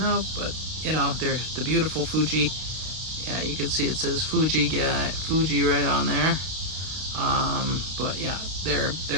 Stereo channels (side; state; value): left; late; 32 ms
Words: but they're the beautiful Fuji. Yeah, you can see it says Fuji right on there. But yeah, they're